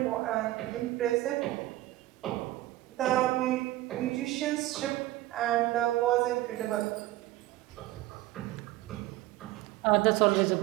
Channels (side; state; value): left; quieter; 16.5 dB